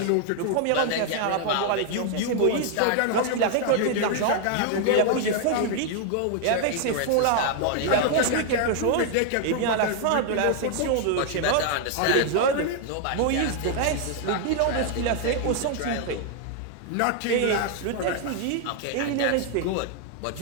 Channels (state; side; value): different; both; correlation 0.00